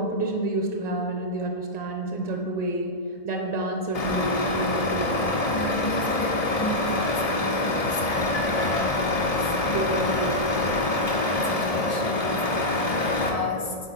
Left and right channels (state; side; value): late; right; 1.7 ms